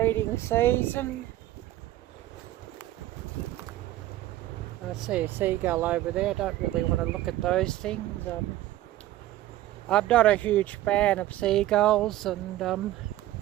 season. I see a seagull over there. I don't really want to look at those things. I'm not a huge fan of seagulls, and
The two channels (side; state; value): left; quieter; 14.8 dB